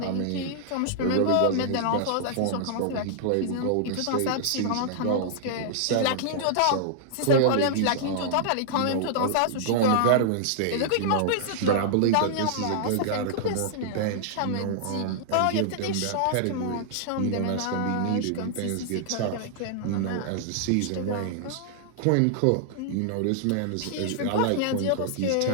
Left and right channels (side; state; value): both; different; correlation -0.01